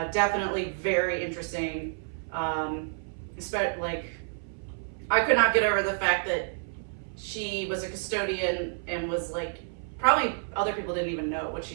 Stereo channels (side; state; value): left; silent; 58 dB below the other